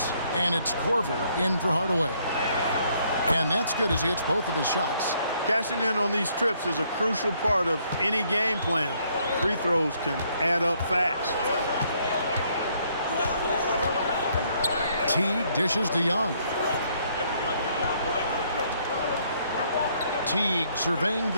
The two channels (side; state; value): both; inverted; correlation -0.68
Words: And it's Korver in for Hardaway. And that's good as he hits both of his shots. Cashing in on these trips is a crucial part of any game plan. Free throws can add up fast. Teague dishes to Young. Teague surveying